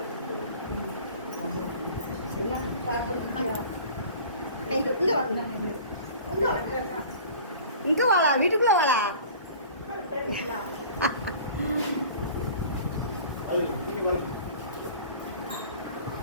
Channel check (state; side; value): inverted; both; correlation -0.43